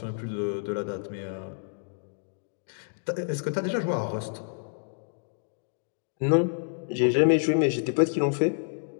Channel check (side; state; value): right; silent; 59 dB below the other